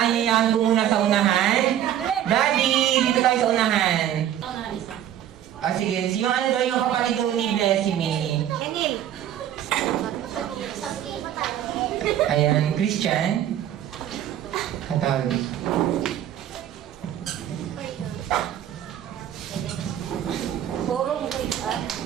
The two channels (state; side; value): quieter; left; 11.1 dB